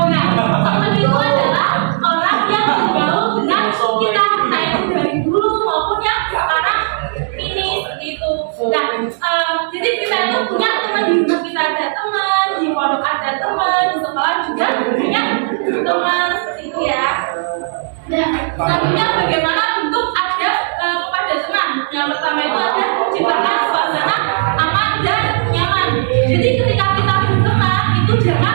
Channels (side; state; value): left; silent; digital silence